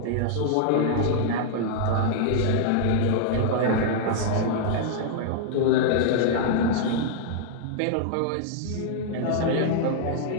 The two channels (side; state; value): both; different; correlation -0.01